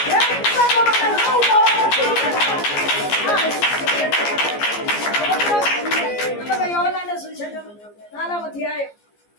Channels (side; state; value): right; late; 14 ms